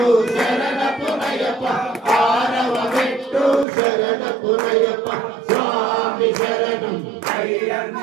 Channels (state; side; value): drops out; left; at 3.7 s